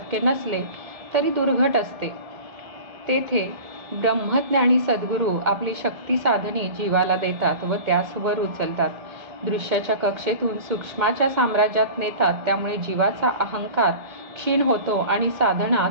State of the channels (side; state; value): left; late; 2.1 ms